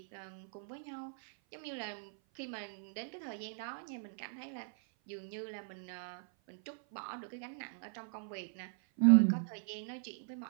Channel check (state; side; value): silent; left; 52 dB below the other